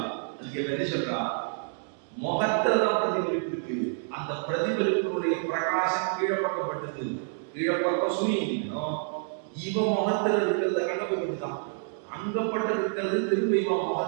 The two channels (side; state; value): left; silent; digital silence